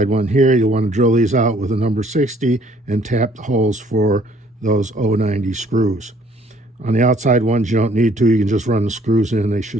one here, you'll want to drill these out with a number 60 and tap the holes for those 090 screws. On the outside ones, you don't need to. You can just run the screws in. They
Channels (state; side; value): normal; both; correlation 0.61